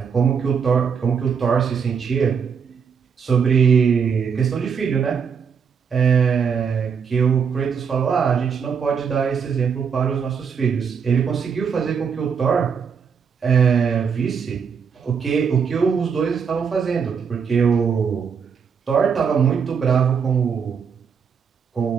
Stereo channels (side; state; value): left; quieter; 6.6 dB